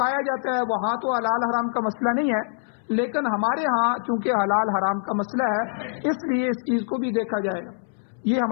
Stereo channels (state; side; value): silent; right; 62 dB below the other